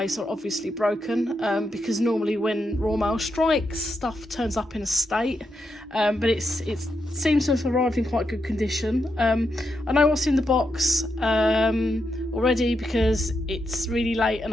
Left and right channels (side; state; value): both; normal; correlation 0.83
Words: or obviously broken, because normally when Royal Mail strikes, stuff turns up in a state, but it seems to have arrived in quite good condition. I know what's in the box already because it's really late and